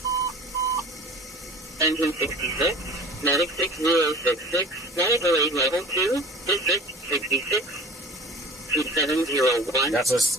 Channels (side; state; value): both; normal; correlation 0.42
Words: Engine 66, Medic 6066, Medical 8 Level 2, District 66, 2701. That's a